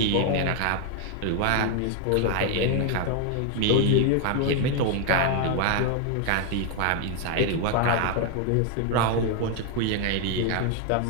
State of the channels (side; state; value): both; different; correlation 0.00